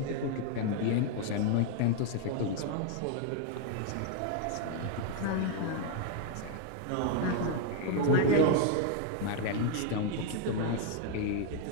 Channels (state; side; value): different; both; correlation 0.00